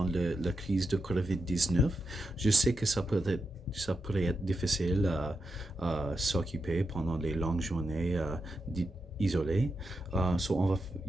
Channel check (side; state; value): both; normal; correlation 0.87